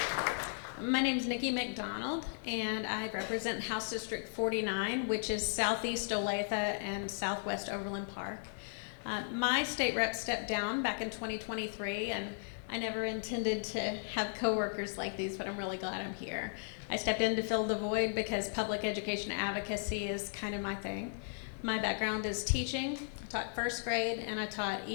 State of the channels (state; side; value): silent; right; digital silence